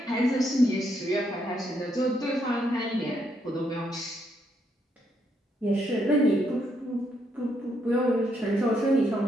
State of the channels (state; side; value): normal; both; correlation 0.76